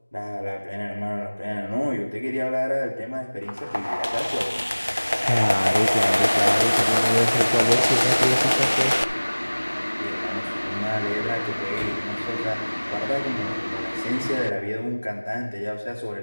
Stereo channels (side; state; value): both; inverted; correlation -1.00